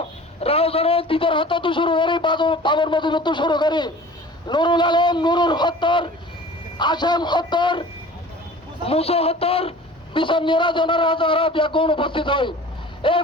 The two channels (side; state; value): both; normal; correlation 0.43